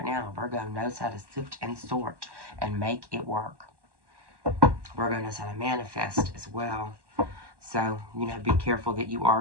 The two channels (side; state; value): left; late; 1.1 ms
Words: now, Virgo knows how to sift and sort and make it work. Virgo knows how to manifest as well. So, be careful that you